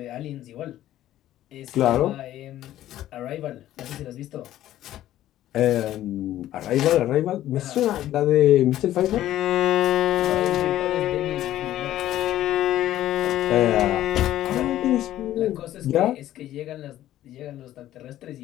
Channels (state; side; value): quieter; right; 13.3 dB